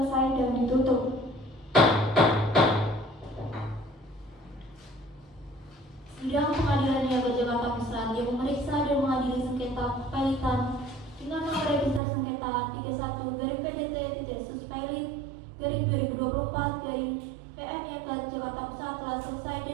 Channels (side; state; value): left; drops out; at 12.0 s